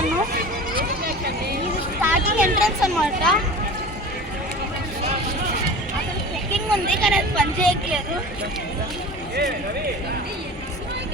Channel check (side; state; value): both; normal; correlation 0.36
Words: ఇది స్టార్టింగ్ ఎంట్రన్స్ అనమాట. అక్కడ చెక్కింగ్ ఉంది కానీ అది పని చేయట్లేదు.